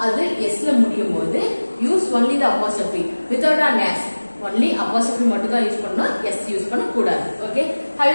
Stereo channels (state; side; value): inverted; both; correlation -1.00